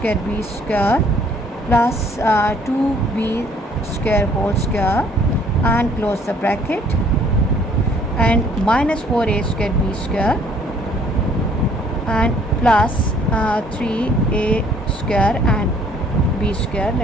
b square plus 2b square whole square, and close the bracket, and minus 4a square b square and plus 3a square and b square.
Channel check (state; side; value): normal; both; correlation 0.60